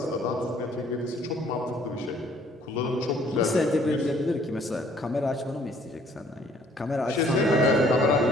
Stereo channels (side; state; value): both; normal; correlation 0.60